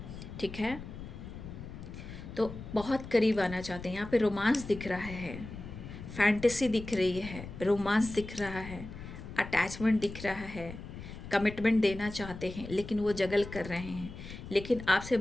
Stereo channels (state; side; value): noise; left; rumble, 11 dB below the sound